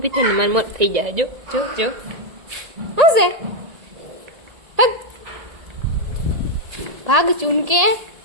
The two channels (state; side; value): late; left; 1.7 ms